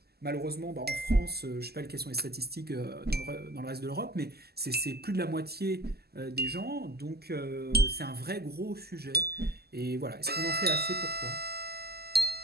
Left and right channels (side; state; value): left; late; 0.46 ms